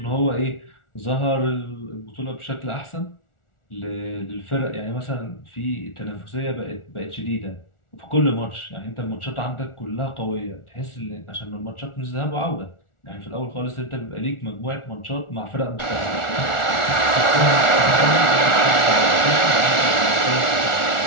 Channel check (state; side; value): late; right; 1.4 ms